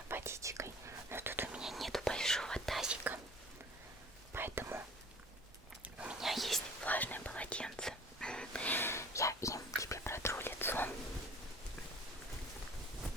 водичкой. Но тут у меня нету большого тазика, поэтому у меня есть влажное полотенце. Я им тебе протру лицо.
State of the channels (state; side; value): normal; both; correlation 0.47